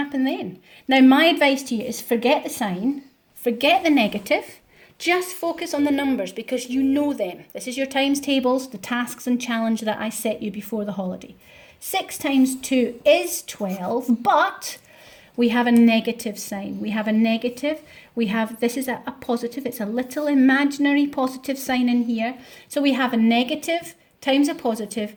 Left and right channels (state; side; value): identical; both; correlation 1.00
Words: then? Now, my advice to you is forget the sign, forget the negative, just focus on the numbers because you know them. This is your times tables, the tasks and challenge that I set you before the holiday. 6 times 2 is 12, but we have a negative sign. We have a negative. We have, this is a positive. It's a little imaginary positive sign in here. So we have a negative times a positive.